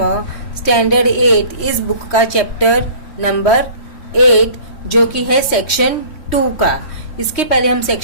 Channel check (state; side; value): late; right; 3.1 ms